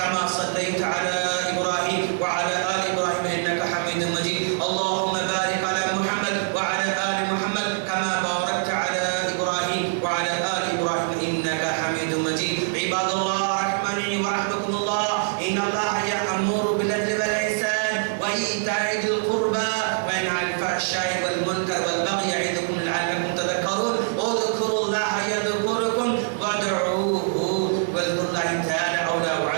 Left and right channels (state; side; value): silent; left; 61 dB below the other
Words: صليت على إبراهيم وعلى آل إبراهيم إنك حميد مجيد. اللهم بارك على محمد وعلى آل محمد كما باركت على إبراهيم وعلى آل إبراهيم إنك حميد مجيد. عباد الله رحمني ورحمكم الله, إن الله يأمر بالعدل والإحسان وإيتاء ذي القربى وينهى عن الفحشاء والمنكر والبغي يعظكم لعلكم تذكرون.